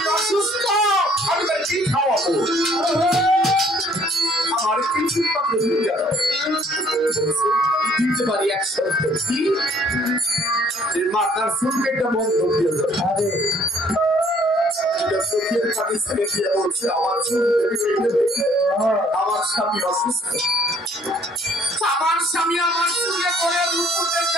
অসুস্থ আমি তার কি খাওয়াবো আমার কিছু মাত্র ভিক্ষা দাও দিতে পারি 100 কি মাথার চুলকেটা বন্ধ দিয়ে যাবে চোখের পানি ছেড়ে দিয়ে বলছে আমার স্বামী অসুস্থ, আমার স্বামী আমার চুলে করে রূপতে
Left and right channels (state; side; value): normal; both; correlation 0.60